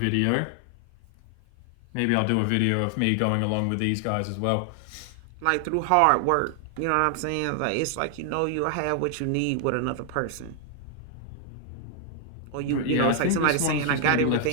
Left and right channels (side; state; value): both; different; correlation 0.00